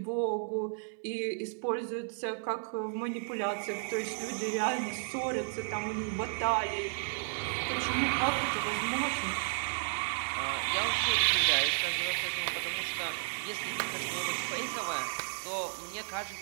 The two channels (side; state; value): left; silent; digital silence